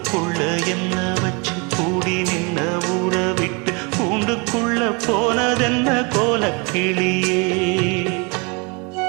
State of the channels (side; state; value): left; quieter; 31.3 dB